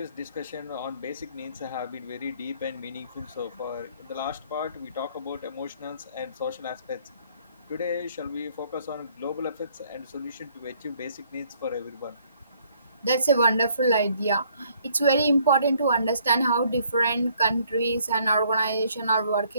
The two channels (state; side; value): inverted; both; correlation -0.65